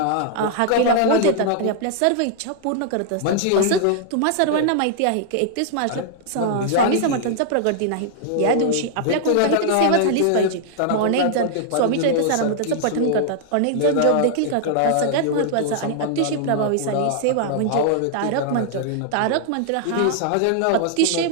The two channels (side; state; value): both; different; correlation -0.01